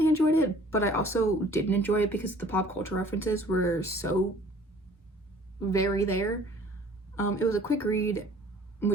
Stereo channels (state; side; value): normal; both; correlation 0.52